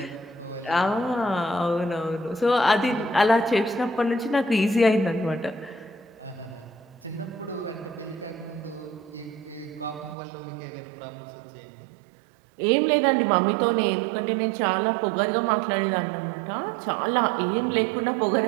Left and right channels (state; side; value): drops out; left; at 10.2 s